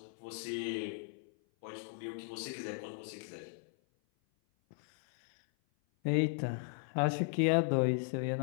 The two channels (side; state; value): right; silent; 54 dB below the other